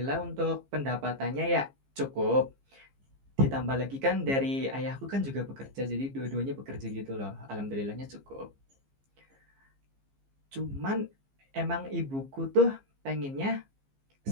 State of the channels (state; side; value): late; left; 15 ms